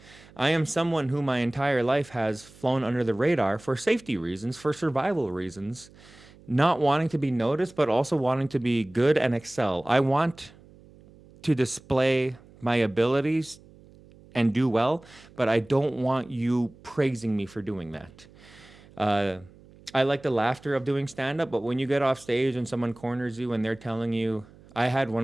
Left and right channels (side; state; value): right; noise; hum, 24 dB below the sound